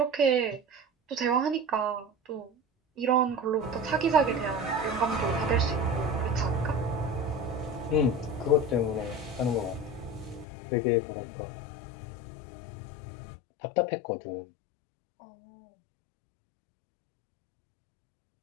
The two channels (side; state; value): right; drops out; at 10.5 s